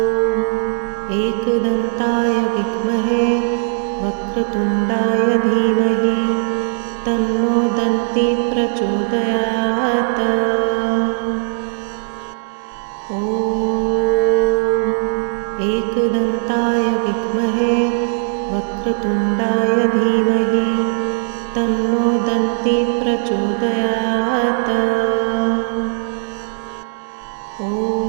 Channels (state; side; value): silent; left; digital silence